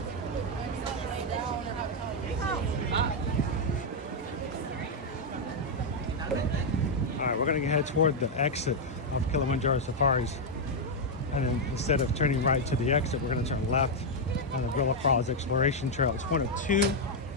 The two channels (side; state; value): both; normal; correlation 0.00